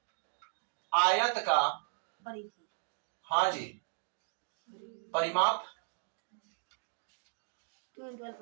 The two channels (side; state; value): left; silent; digital silence